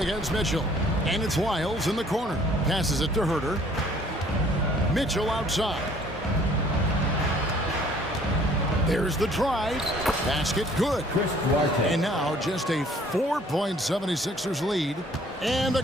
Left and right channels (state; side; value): normal; both; correlation 0.57